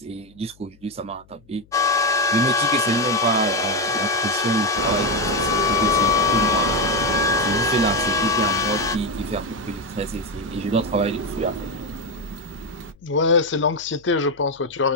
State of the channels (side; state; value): left; noise; hum, 29 dB below the sound